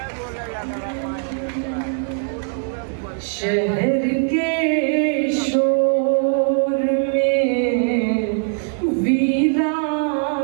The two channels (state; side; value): silent; left; digital silence